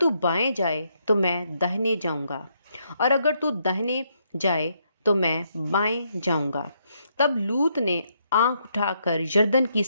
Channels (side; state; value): both; inverted; correlation -0.75